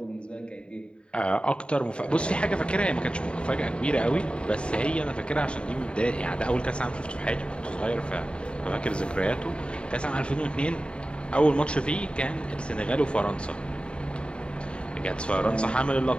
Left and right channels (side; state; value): right; late; 0.054 ms